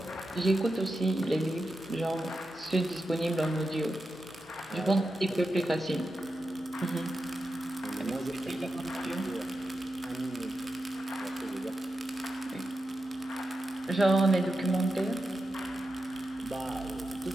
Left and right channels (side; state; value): left; noise; hum, 27 dB below the sound